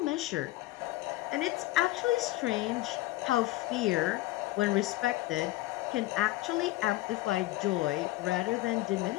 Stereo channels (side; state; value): right; quieter; 18.0 dB